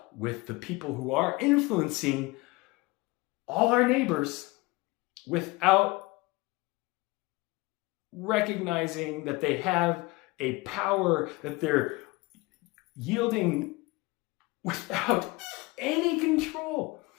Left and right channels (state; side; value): quieter; right; 23.1 dB